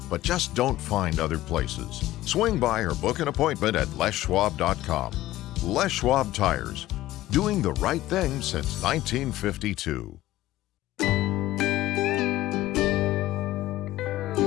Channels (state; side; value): quieter; right; 15.7 dB